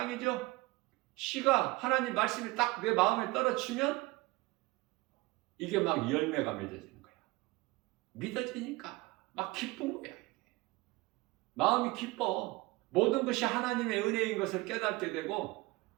씨가, 하나님 말씀이 딱 내 마음에 떨어지면 이게 막 열매가 맺어지는 거야. 믿어지니까 막 기쁜 거야. 마음이 기뻐. 모든 것이 하나님의 은혜인 것을 깨닫게 되고,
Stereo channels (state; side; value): quieter; left; 21.6 dB